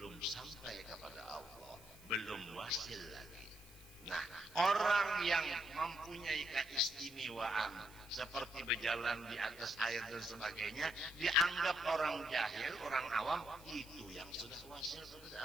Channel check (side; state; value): right; noise; hiss, 21 dB below the sound